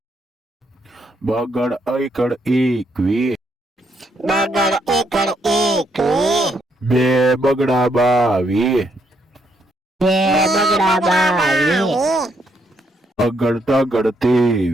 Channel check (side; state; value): both; normal; correlation 0.74